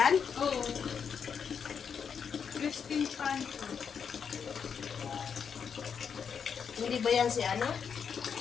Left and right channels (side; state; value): right; quieter; 6.8 dB